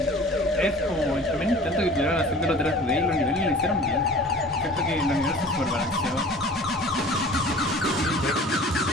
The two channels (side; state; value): both; normal; correlation 0.44